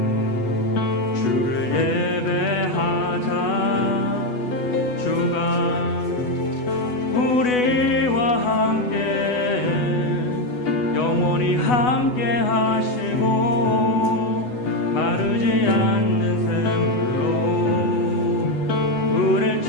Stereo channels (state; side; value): late; right; 8.1 ms